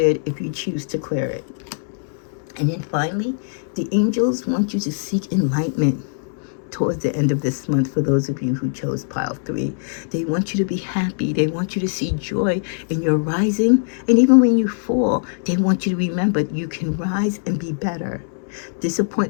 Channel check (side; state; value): right; silent; 65 dB below the other